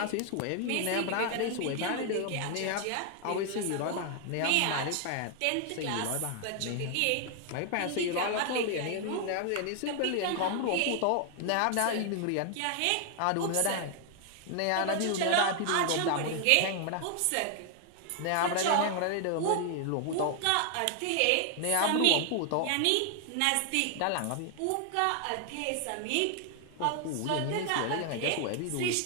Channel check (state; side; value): different; both; correlation 0.00